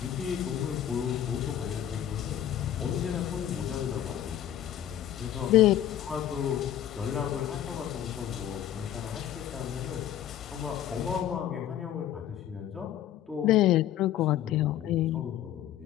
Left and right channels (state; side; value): quieter; right; 11.3 dB